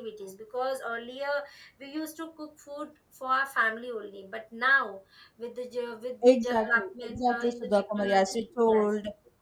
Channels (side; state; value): both; identical; correlation 1.00